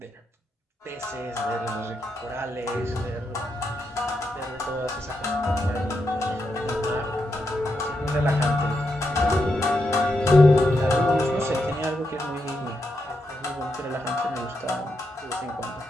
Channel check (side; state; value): both; normal; correlation 0.83